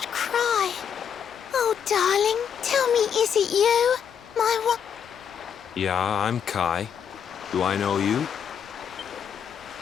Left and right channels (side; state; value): right; quieter; 7.9 dB